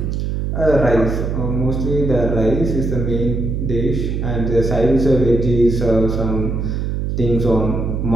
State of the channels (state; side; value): noise; right; hum, 1 dB below the sound